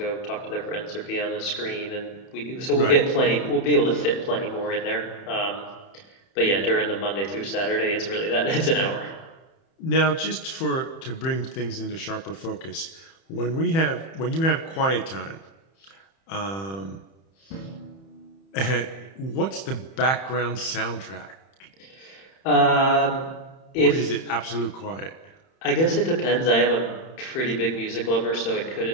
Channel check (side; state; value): right; late; 31 ms